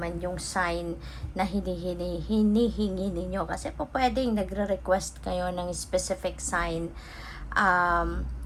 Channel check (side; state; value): both; identical; correlation 1.00